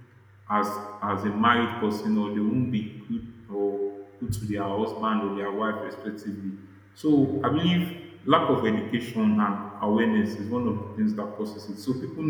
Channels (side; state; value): both; identical; correlation 1.00